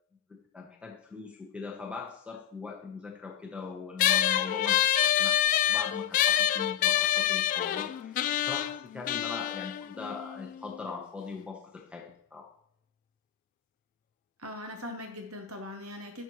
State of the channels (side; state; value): right; quieter; 10.5 dB